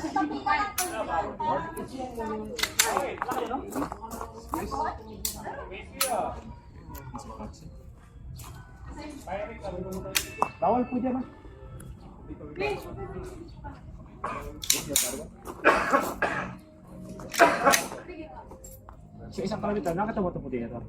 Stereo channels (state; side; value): identical; both; correlation 1.00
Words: Bawal po dyan ha. So isang palagay nakatawa ito po din ito.